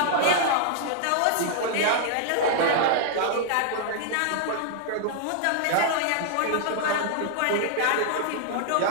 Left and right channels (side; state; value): both; different; correlation -0.01